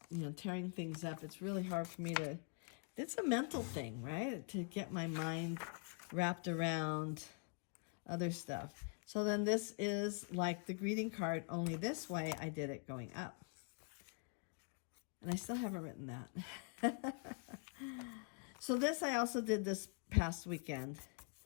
tearing things up. It's really hard for me to, it's a mental thing, right? To get my mind wrapped around other stuff. So then this is like the greeting card, only this way I did it going up. And I still haven't written that. So this I also did this past weekend.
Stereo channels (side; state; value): right; quieter; 38.4 dB